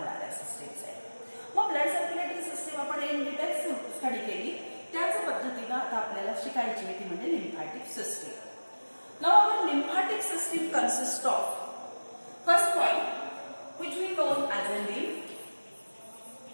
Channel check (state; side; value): inverted; both; correlation -1.00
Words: सिस्टीम्स आहेत. मग ब्लड सर्क्युलेटरी सिस्टीम आपण इन डिटेल्स स्टडी केली, त्याच पद्धतीने आता आपल्याला शिकायची आहे ती म्हणजे lymphatic system. Now our lymphatic system consist of first point which we known as a lymph.